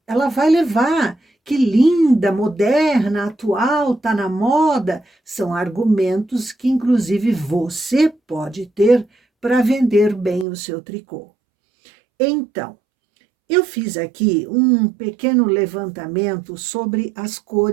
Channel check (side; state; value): left; drops out; at 10.5 s